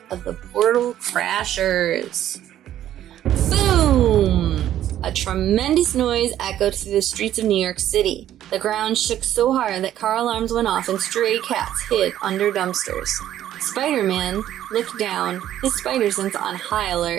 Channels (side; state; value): left; quieter; 11.9 dB